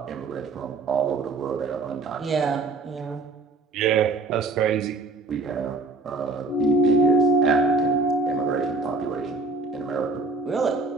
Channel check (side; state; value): left; quieter; 3.5 dB